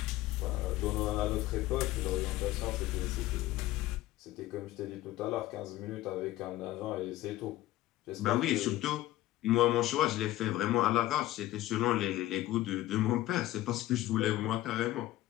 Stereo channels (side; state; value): right; quieter; 15.8 dB